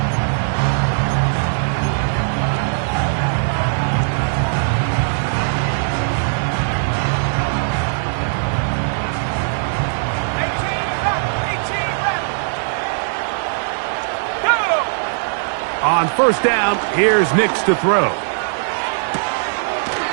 On 1st down, here's Nix to throw.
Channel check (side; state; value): left; silent; digital silence